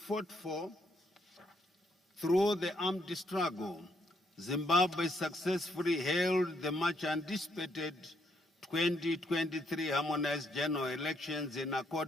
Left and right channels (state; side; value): normal; both; correlation 0.73